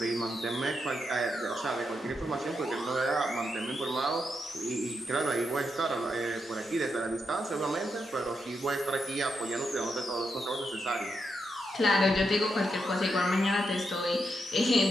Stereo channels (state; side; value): normal; both; correlation 0.83